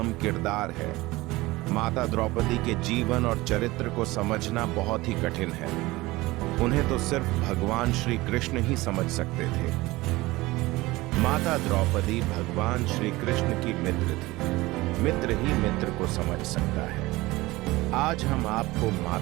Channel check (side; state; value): left; quieter; 20.1 dB